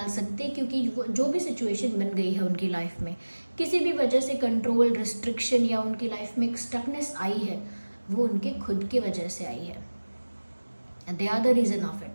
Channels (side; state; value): both; inverted; correlation -1.00